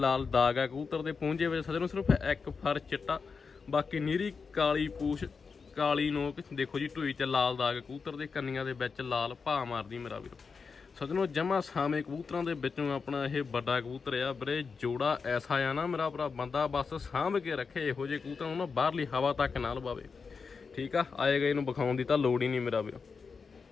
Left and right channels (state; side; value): quieter; right; 5.2 dB